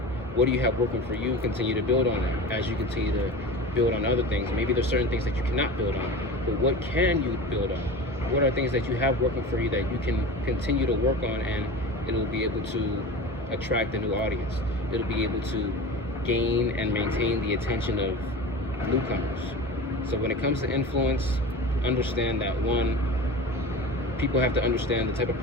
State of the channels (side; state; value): both; normal; correlation 0.32